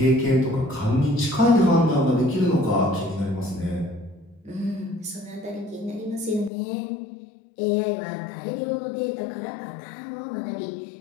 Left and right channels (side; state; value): right; drops out; at 6.5 s